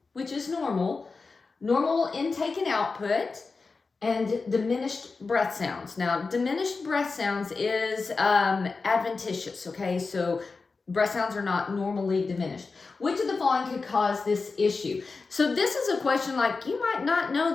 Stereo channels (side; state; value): right; quieter; 4.3 dB